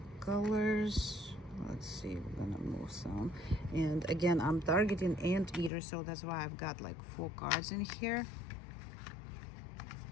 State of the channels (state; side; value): drops out; right; at 5.7 s